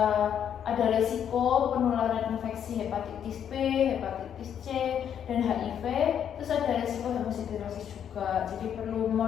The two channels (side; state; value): right; quieter; 8.9 dB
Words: ada resiko penularan infeksi hepatitis B, hepatitis C, dan HIV. Terus ada resiko hemosiderosis juga. Jadi perlu